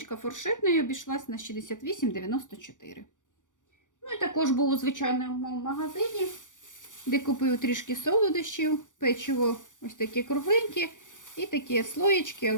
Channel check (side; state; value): right; late; 0.87 ms